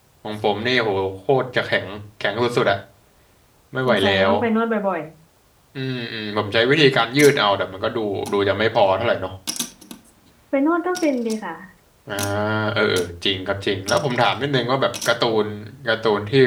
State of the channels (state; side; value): identical; both; correlation 1.00